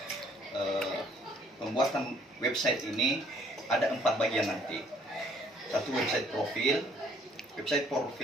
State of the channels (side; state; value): both; normal; correlation 0.62